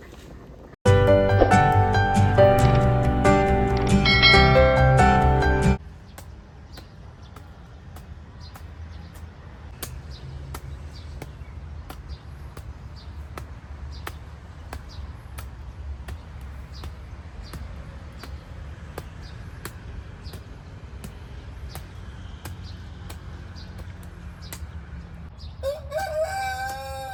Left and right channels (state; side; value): identical; both; correlation 1.00